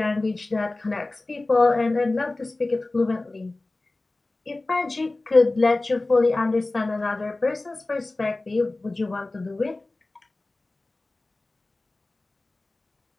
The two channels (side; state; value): right; quieter; 3.0 dB